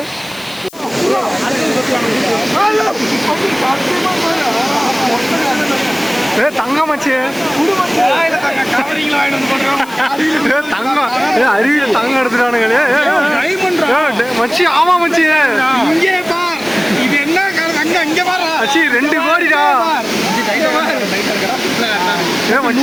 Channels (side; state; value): left; noise; hiss, 21 dB below the sound